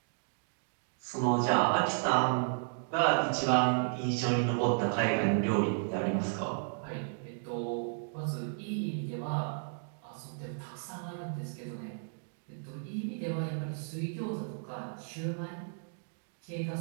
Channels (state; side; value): silent; left; digital silence